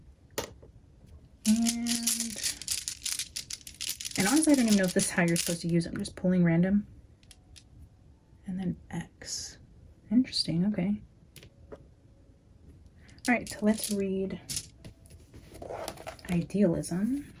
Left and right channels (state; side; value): identical; both; correlation 1.00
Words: And honestly, I don't even know if this is how you're supposed to use it. I'm just pulling random. And then X. Interesting. Okay. All right, so let's read idealism.